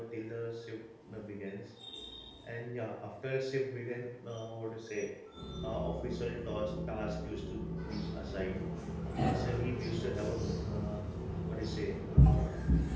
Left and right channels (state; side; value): identical; both; correlation 1.00